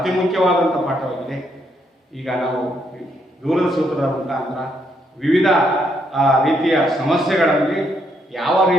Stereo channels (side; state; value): both; normal; correlation 0.75